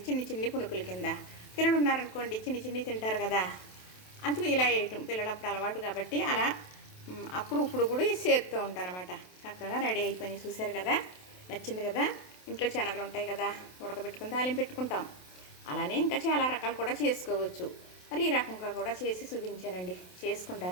చిన్ని పునుకుల కింద. పిల్లలు ఉన్నారనుకోండి చిన్ని తింటారు కదా, అందుకు ఇలా వేయటం పిల్లలప్పుడు అలవాటు కాబట్టి అలా అప్పుడు ఇప్పుడు కూడా చేస్తూ ఉంటానన్నమాట. చక్కగా రెడీ అయిపోయినాయి, చూశారు కదా. నచ్చింది కదా. ఇంట్లో శనగలు ఉంటాయి కదా, ఉడకబెట్టుకుని తాలింపు పెట్టుకుంటాం. అలానే ఇంకా చాలా రకాలు కూడా చేసుకోవచ్చు. మరి ఈ రకంగా కూడా చేసి చూపించానండి,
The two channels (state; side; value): late; right; 27 ms